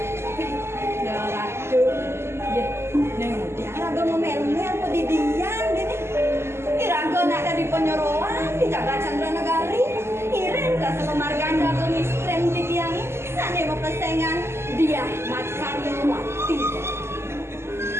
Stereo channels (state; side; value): late; left; 0.12 ms